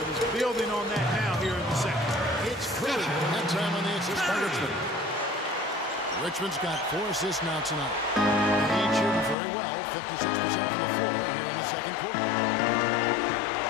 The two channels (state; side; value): drops out; right; at 9.3 s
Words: he's building on that now here in the second. It's Curry, that time on the assist by Richmond. Richmond's got 4 assists now tonight. The Heat shooting very well, 56% from the floor here in the second quarter.